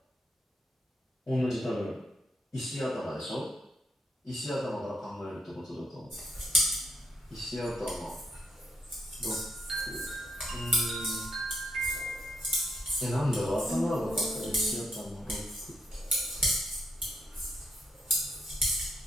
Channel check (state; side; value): normal; both; correlation 0.76